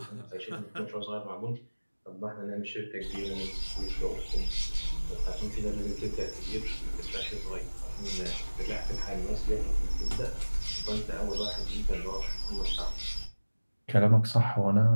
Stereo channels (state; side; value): inverted; both; correlation -1.00